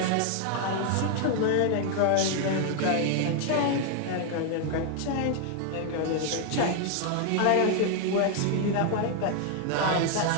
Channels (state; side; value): different; both; correlation 0.00